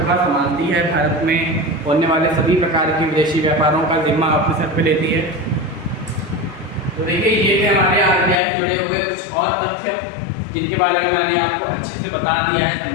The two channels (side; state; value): right; drops out; at 8.3 s